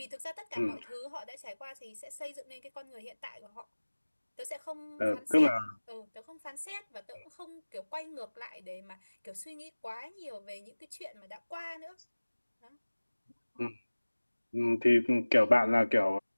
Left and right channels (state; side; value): inverted; both; correlation -1.00